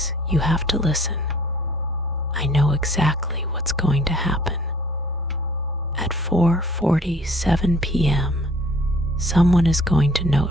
you have to listen. I know exactly what's going to happen. At 4:47 p.m., someone is going to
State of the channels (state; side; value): normal; both; correlation 0.54